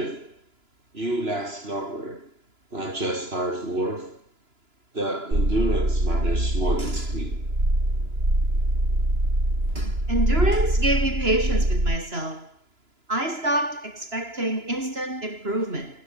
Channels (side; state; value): left; late; 2.9 ms